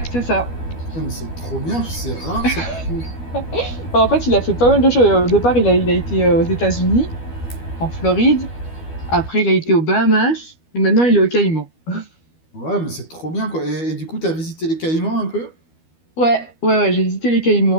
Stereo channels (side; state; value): right; late; 12 ms